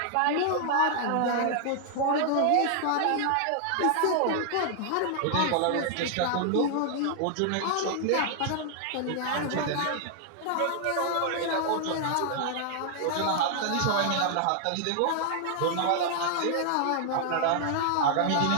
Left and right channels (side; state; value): both; different; correlation 0.00